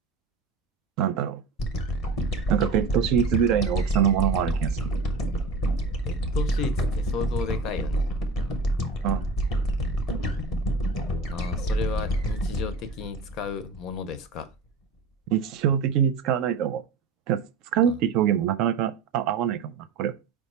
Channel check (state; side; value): quieter; left; 4.1 dB